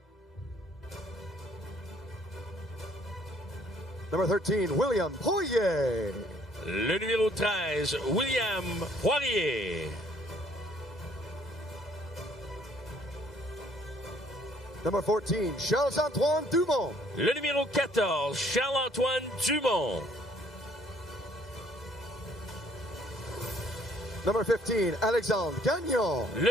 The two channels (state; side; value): normal; both; correlation 0.62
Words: Number 13, William Poirier. Le numéro 13, William Poirier. Number 14, Charles-Antoine Dumont. Le numéro 14, Charles-Antoine Dumont. Number 15, Alexandre Gagnon.